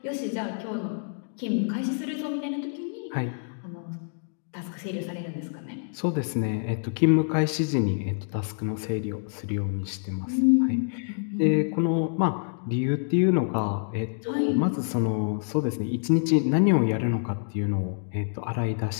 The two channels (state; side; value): silent; right; digital silence